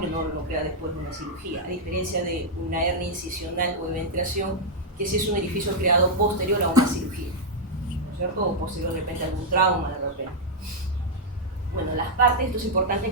no lo crea después de una cirugía, a diferencia de una hernia incisional o eventración, que sí es un orificio creado posterior a una cirugía, ¿no es cierto? O posterior de repente a algún trauma de repente. Bueno, las partes, esto es importante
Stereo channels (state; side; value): normal; both; correlation -0.04